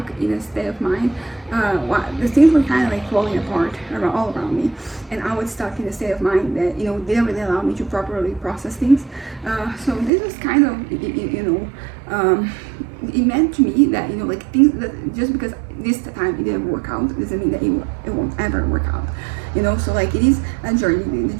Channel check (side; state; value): left; drops out; at 10.1 s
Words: in a state of mind. The things were kind of like falling apart all around me, and I was stuck in a state of mind that, you know, didn't really allow me to properly process things. So this was kind of, you know, it meant to me that, you know, like things that just because this time it didn't work out doesn't mean that it won't ever work out. You know, so like it is a journey. The